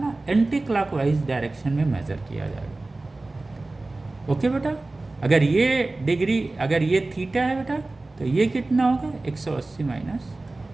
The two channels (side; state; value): left; quieter; 3.1 dB